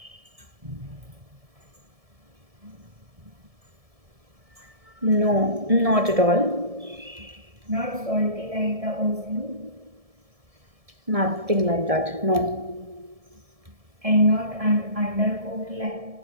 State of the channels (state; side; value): late; left; 1.7 ms